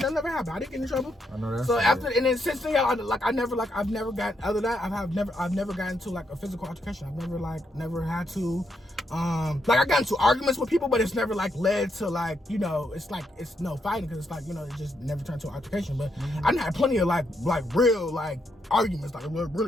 that never happened. I didn't get in trouble. I know that. So after, and then since then, I've never got, other than that, I've never gotten into like a physical altercation. I've never had to, like I got into arguments with people, but it's never like led to like, you know, it's no fighting, because it's like, you know, it just never turned to an altercation. But I had plenty of like real like arguments, like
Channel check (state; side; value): normal; both; correlation 0.79